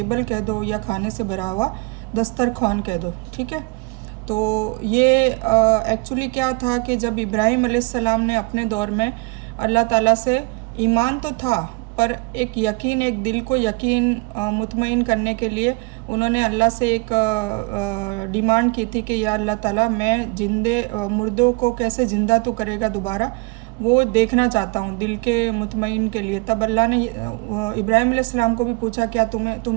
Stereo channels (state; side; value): quieter; left; 29.6 dB